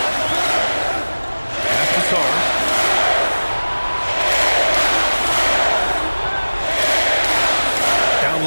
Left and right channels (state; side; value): inverted; both; correlation -1.00